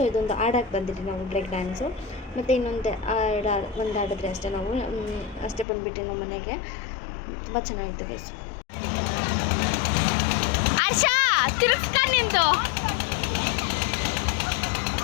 ಇದೊಂದು ಆಡಕ್ಕೆ ಬಂದಿದ್ವಿ ನಾವು, ಬ್ರೇಕ್ ಡ್ಯಾನ್ಸು. ಮತ್ತು ಇನ್ನೊಂದು ಒಂದು ಆಡಿದ್ರೆ ಅಷ್ಟೇ ನಾವು ಅಷ್ಟೇ ಬಂದುಬಿಟ್ಟು ನಮ್ಮ ಮನೆಗೆ. ತುಂಬ ಚೆನ್ನಾಗಿತ್ತು ಗೈಸ್. ಆಶಾ ತಿರುಗಿಸ್ಕ ನಿಂದು.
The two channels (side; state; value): right; drops out; at 5.7 s